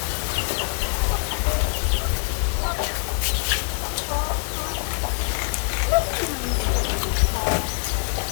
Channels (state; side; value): silent; right; 61 dB below the other